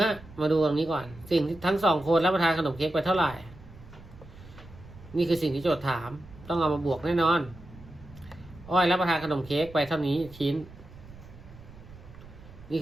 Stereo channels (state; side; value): noise; right; rumble, 19 dB below the sound